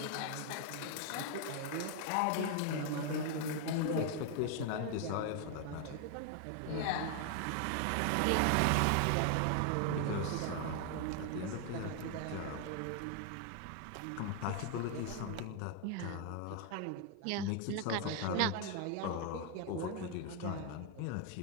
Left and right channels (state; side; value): different; both; correlation 0.00